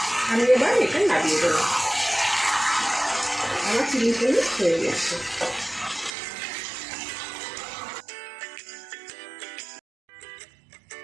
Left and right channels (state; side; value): drops out; left; at 6.2 s